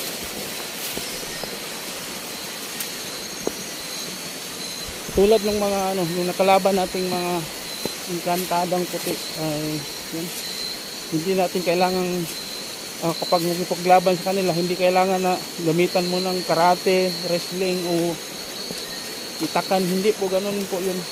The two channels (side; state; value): both; identical; correlation 1.00